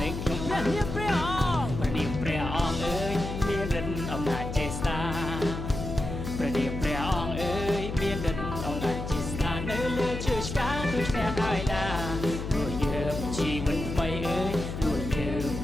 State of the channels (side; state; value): left; noise; hum, 6 dB below the sound